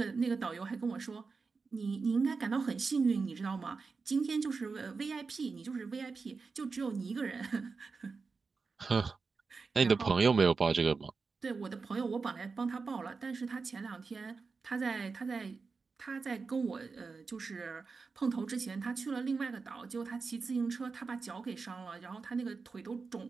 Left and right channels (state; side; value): quieter; left; 4.6 dB